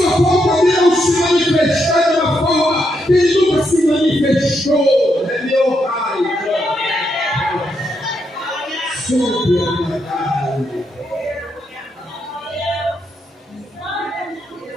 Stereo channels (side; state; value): both; normal; correlation 0.80